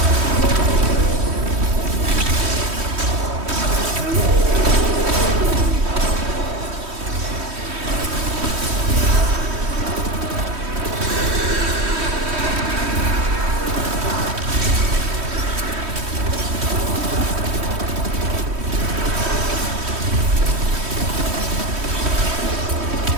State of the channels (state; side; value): late; left; 3.1 ms